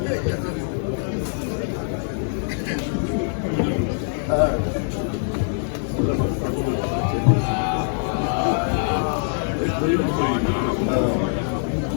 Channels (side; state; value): right; silent; 63 dB below the other